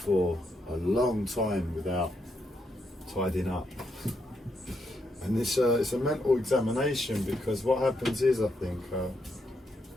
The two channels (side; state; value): both; normal; correlation 0.79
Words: a long time without tidying up. And it's a mental examination, because what happens is, I think,